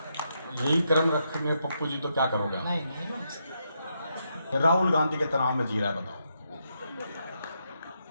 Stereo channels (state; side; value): inverted; both; correlation -0.80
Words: यही क्रम रख में पप्पू जी तो क्या करोगे? नहीं। राहुल गांधी के तनाव में जी रहा है, बताओ।